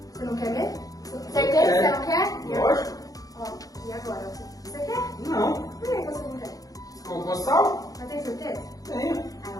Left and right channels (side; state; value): right; late; 0.17 ms